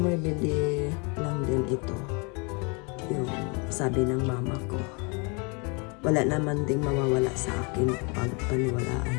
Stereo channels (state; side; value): quieter; right; 32.3 dB